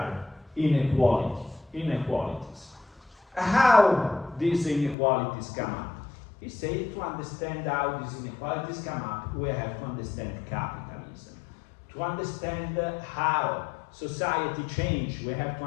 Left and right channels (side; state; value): right; drops out; at 5.0 s